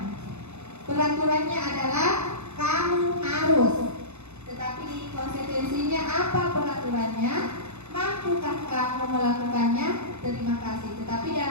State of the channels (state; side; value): late; left; 0.81 ms